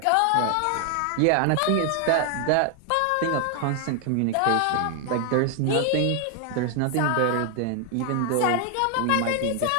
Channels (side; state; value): both; different; correlation 0.00